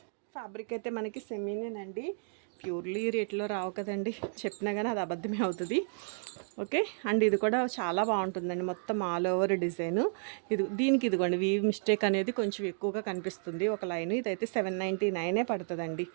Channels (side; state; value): left; silent; digital silence